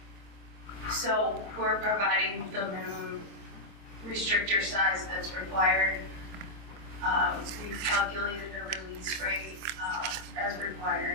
So we're providing the minimum restrictor size that's required. We've calculated a release rate as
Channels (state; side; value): late; left; 25 ms